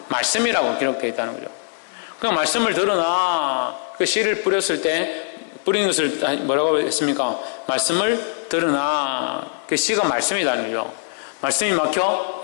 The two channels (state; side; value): silent; right; digital silence